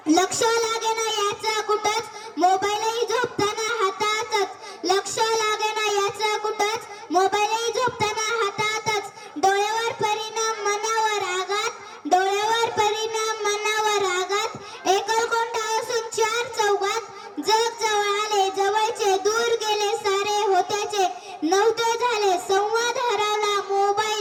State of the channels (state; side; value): identical; both; correlation 1.00